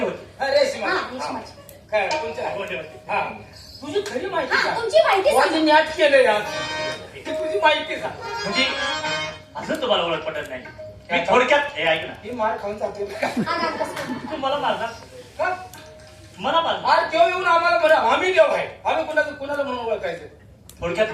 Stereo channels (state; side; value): identical; both; correlation 1.00